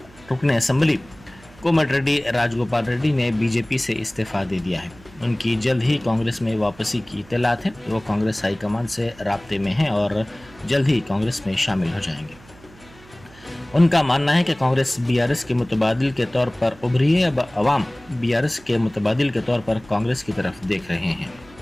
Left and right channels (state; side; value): noise; right; hum, 24 dB below the sound